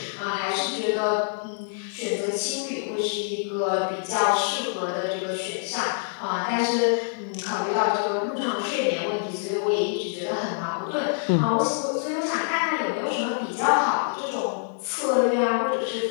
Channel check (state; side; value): silent; right; 57 dB below the other